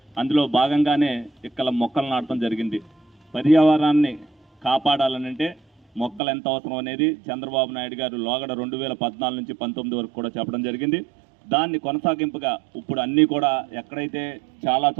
అందులో భాగంగానే ఇక్కడ మొక్కలు నాటడం జరిగింది. పర్యావరణాన్ని కాపాడాలనంటే మొక్కలు ఎంత అవసరం అనేది చంద్రబాబు నాయుడు గారు లోగడ 2014 నుంచి 19 వరకు కూడా చెప్పడం జరిగింది. దాన్ని కొనసాగింపుగా ఇప్పుడు అన్నీ కూడా ఎక్కడైతే చాలా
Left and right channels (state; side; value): drops out; left; at 6.2 s